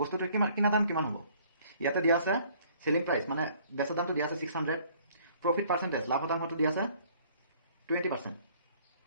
বস্তুটোৰ কিনা দাম কিমান হ'ব? ইয়াতে দিয়া আছে চেলিং প্ৰাইচ, মানে বেচা দামটো দিয়া আছে 600, প্ৰফিট পাৰ্চেণ্টেজ লাভ শতাংশটো দিয়া আছে 20%।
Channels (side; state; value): both; inverted; correlation -0.58